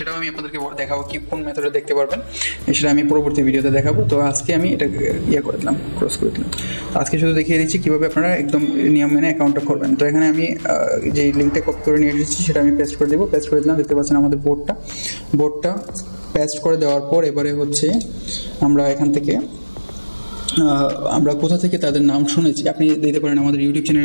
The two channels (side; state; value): both; inverted; correlation -1.00